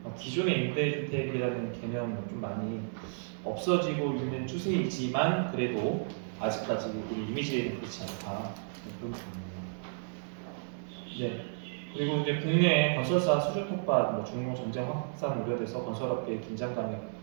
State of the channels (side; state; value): left; silent; digital silence